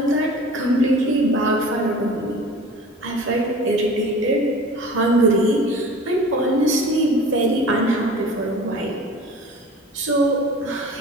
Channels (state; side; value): normal; both; correlation 0.41